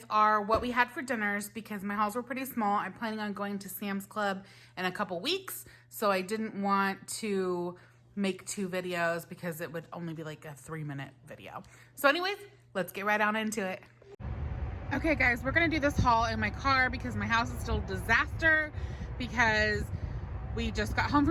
what we had for dinners because my hauls were pretty small. I'm planning on going to Sam's Club in a couple weeks, so I didn't want to make 2 videos because it would only be like a 3-minute video. So anyways, let's get right on into it. Okay guys, we're gonna do this haul in my car because my house is still a disaster because we just got home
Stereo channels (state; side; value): identical; both; correlation 1.00